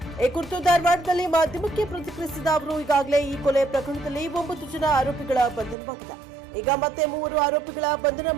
ಈ ಕುರಿತು ಧಾರವಾಡದಲ್ಲಿ ಮಾಧ್ಯಮಕ್ಕೆ ಪ್ರತಿಕ್ರಿಯಿಸಿದ ಅವರು, ಈಗಾಗಲೇ ಈ ಕೊಲೆ ಪ್ರಕರಣದಲ್ಲಿ 9 ಜನ ಆರೋಪಿಗಳ ಬಂಧನವಾಗಿದೆ. ಈಗ ಮತ್ತೆ 3 ಆರೋಪಿಗಳ ಬಂಧನ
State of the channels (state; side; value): drops out; left; at 5.8 s